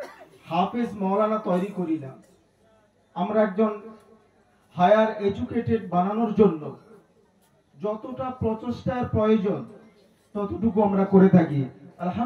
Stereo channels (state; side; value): identical; both; correlation 1.00